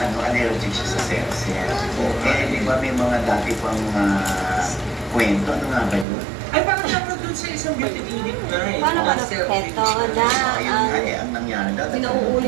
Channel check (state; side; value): drops out; left; at 6.1 s